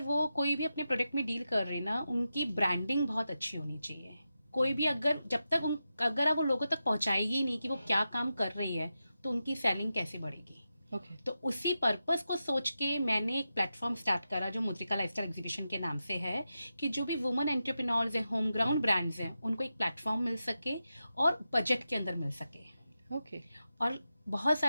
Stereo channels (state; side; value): inverted; both; correlation -0.90